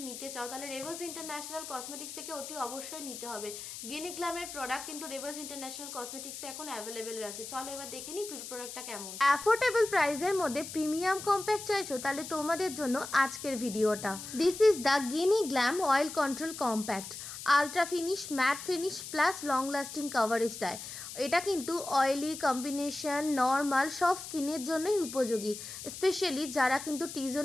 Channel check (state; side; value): noise; left; hiss, 10 dB below the sound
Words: নিতে চাও তাহলে রেভাস ইন্টারন্যাশনাল কসমেটিক্স থেকে অতি অবশ্যই নিতে হবে। গিনিগ্লামের প্রোডাক্ট কিন্তু রেভাস ইন্টারন্যাশনাল কসমেটিক্সে এখন অ্যাভেলেবেল আছে। চলো এবার দেখে নিই প্রোডাক্টটা কেমন। অ্যাফোর্ডেবল প্রাইসের মধ্যে প্রিমিয়াম কম্প্যাক্ট চাইছো তাহলে তোমাদের জন্য আজকের ভিডিওটা। This is the Ginniglam oil control compact. Ultra finish, matte finish plus long lasting coverage দেয়। এটা কিন্তু অয়েলি, কম্বিনেশন, নর্মাল সব স্কিনের জন্যই উপযোগী। স্পেশালি যারা কিন্তু